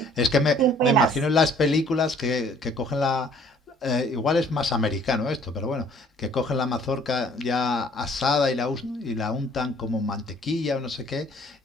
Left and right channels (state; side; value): normal; both; correlation 0.57